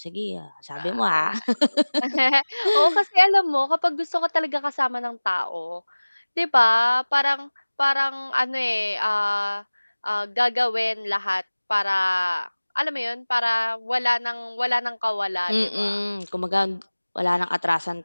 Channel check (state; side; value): inverted; both; correlation -1.00